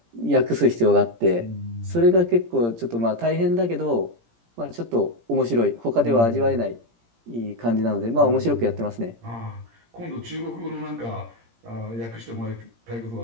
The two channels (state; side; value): late; left; 17 ms